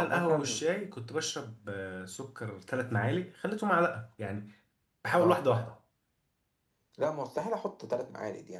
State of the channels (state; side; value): identical; both; correlation 1.00